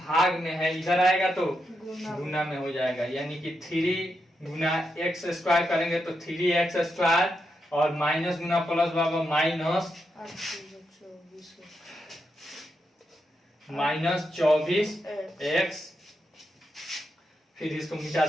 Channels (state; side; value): normal; both; correlation 0.84